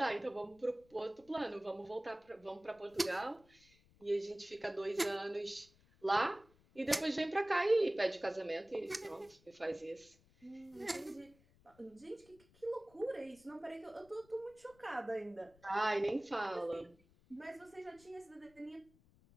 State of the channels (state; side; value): noise; left; rumble, 29 dB below the sound